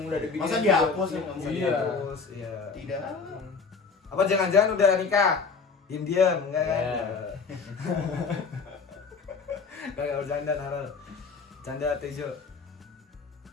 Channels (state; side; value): quieter; right; 5.0 dB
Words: Udah dibikin Masa juga. dihapus ya? Nggak bisa Iya. Terus iya. Tidak. Apa jangan-jangan udah nikah? Diam-diam enggak kan? Iya. Enggak bercanda Narel. Canda Tejo.